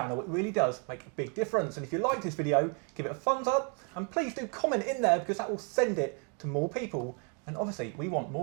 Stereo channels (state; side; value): quieter; left; 38.2 dB